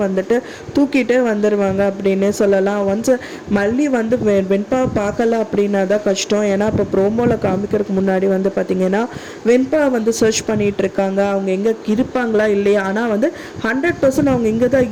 வந்துட்டு தூக்கிட்டே வந்துடுவாங்க அப்படின்னே சொல்லலாம். ஒன்ஸ் மல்லி வந்து வெண்பாவை பார்க்கல அப்படின்னா தான் கஷ்டம். ஏன்னா இப்போ ப்ரோமோவில் காமிக்கிறதுக்கு முன்னாடி வந்து பார்த்திங்கன்னா வெண்பா வந்து சர்ச் பண்ணிகிட்டு இருக்காங்க, அவங்க எங்கே இருப்பாங்களா இல்லையா. ஆனால் வந்து 100% அவங்க இங்கே தான்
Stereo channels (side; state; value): both; identical; correlation 1.00